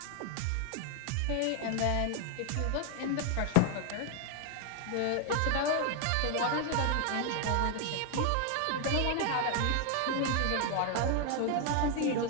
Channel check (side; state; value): both; different; correlation 0.00